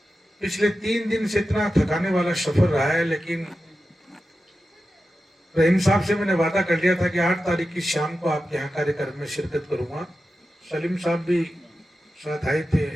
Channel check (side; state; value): both; normal; correlation 0.92